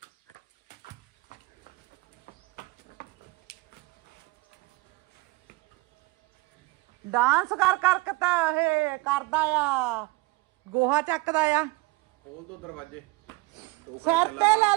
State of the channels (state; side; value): quieter; left; 22.7 dB